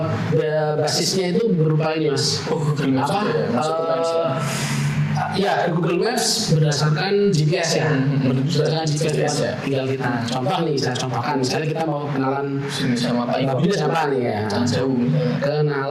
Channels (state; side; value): identical; both; correlation 1.00